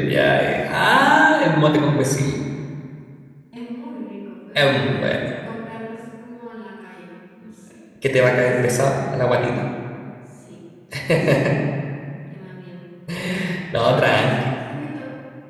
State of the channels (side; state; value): both; identical; correlation 1.00